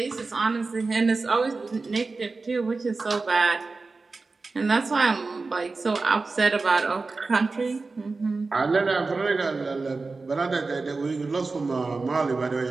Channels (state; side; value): quieter; left; 3.9 dB